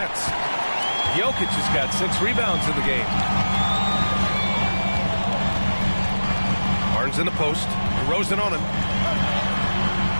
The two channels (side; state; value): both; inverted; correlation -1.00